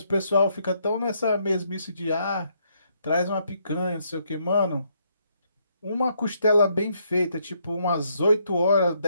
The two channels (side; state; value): both; inverted; correlation -0.73